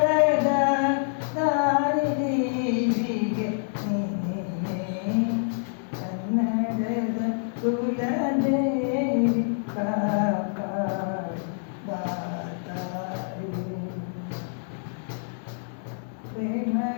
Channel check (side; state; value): right; silent; digital silence